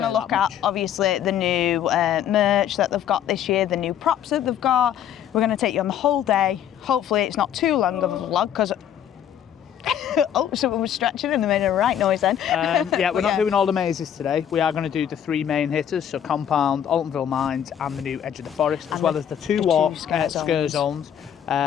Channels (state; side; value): quieter; right; 9.7 dB